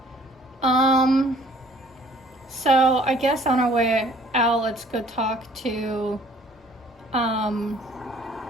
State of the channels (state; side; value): normal; both; correlation 0.56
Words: So I guess on our way out, let's go talk to